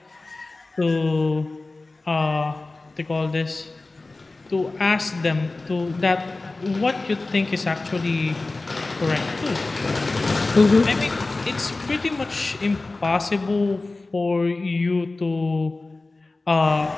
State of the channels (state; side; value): quieter; right; 3.3 dB